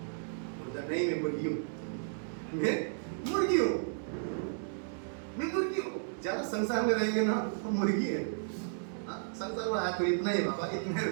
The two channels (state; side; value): silent; left; digital silence